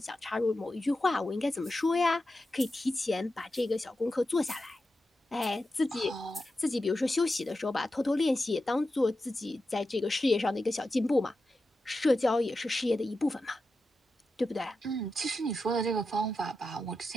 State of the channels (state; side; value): normal; both; correlation 0.90